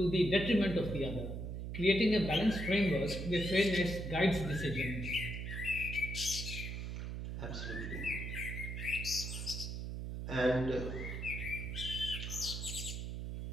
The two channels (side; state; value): right; noise; hum, 5 dB below the sound